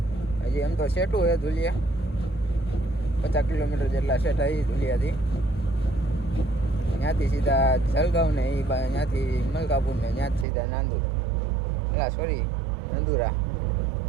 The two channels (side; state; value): left; drops out; at 10.5 s